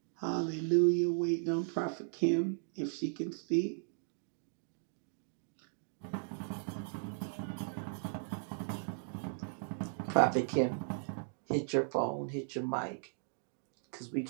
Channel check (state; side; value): silent; left; digital silence